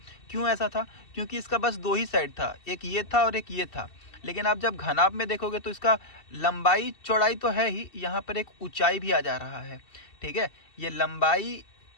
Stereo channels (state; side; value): late; right; 2.7 ms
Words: क्यों ऐसा था? क्योंकि इसका बस दो ही साइड था, एक ये था और एक ये था। लेकिन आप जब घनाभ में देखोगे तो इसका लंबाई चौड़ाई तो है ही, यहाँ पर एक ऊंचाई भी आ जा रहा है। ठीक है, ये